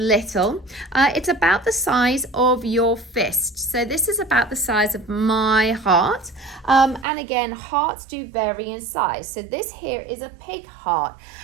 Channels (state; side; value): drops out; left; at 7.1 s